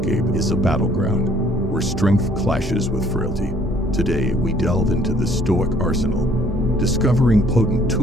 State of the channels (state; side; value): normal; both; correlation 0.60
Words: is a battleground where strength clashes with frailty. Today, we delve into the Stoic arsenal, discovering potent